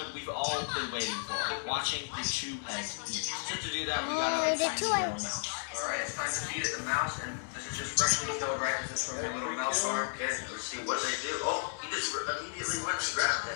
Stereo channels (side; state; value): right; silent; 55 dB below the other